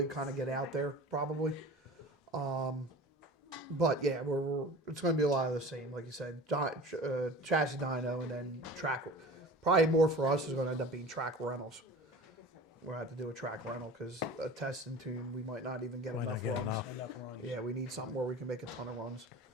kind of get out there, probably. But yeah, it's going to be a lot of the same, like you said, chassis dyno and then track. Probably more for us is going to end up being track rentals. We'll have to do a track rental because a test and tune, we might not even get Might not enough get runs. enough. Yeah, we need something where we can make a ton of runs.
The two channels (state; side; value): normal; both; correlation 0.39